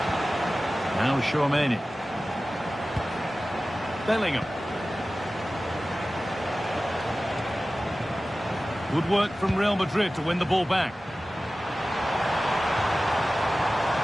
Now Chouameni. Bellingham. Good work from Real Madrid to win the ball back.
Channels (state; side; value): normal; both; correlation 0.96